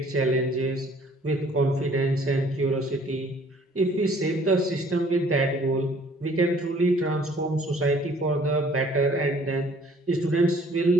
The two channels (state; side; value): normal; both; correlation 0.57